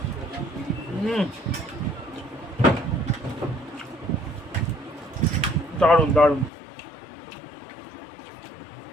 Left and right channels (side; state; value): right; drops out; at 6.5 s